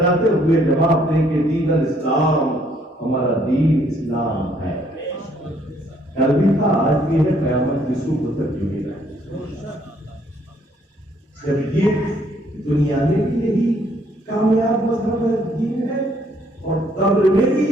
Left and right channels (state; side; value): normal; both; correlation 0.66